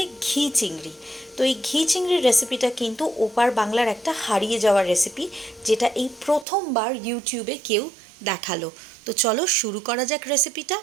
ঘি চিংড়ি। তো এই ঘি চিংড়ির রেসিপিটা কিন্তু ওপার বাংলার একটা হারিয়ে যাওয়ার রেসিপি, যেটা এই প্রথমবার ইউটিউবে কেউ দেখালো। তো চলো শুরু করা যাক রেসিপিটা।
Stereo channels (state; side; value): drops out; left; at 6.5 s